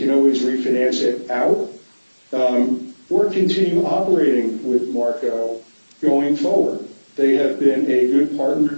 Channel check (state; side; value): inverted; both; correlation -1.00